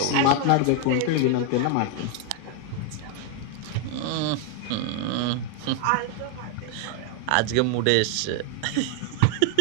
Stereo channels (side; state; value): both; different; correlation 0.00